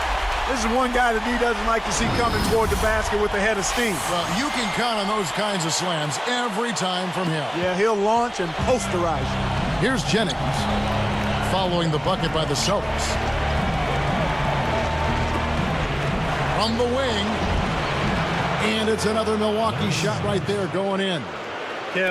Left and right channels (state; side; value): identical; both; correlation 1.00